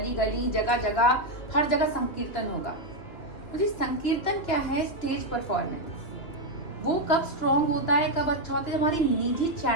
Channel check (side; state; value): right; late; 2.9 ms